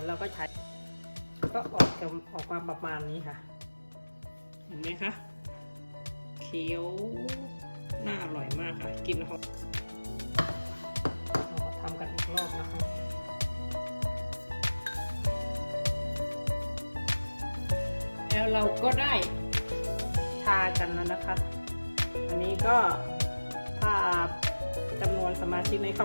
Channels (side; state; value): both; inverted; correlation -1.00